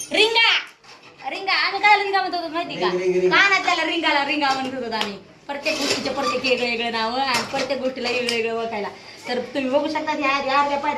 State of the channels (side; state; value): both; identical; correlation 1.00